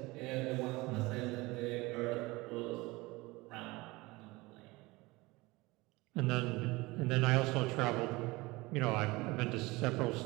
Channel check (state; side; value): quieter; left; 22.2 dB